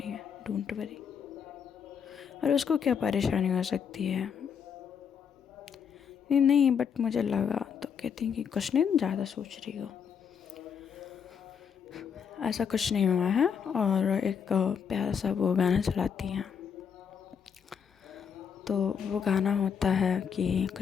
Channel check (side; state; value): right; quieter; 7.2 dB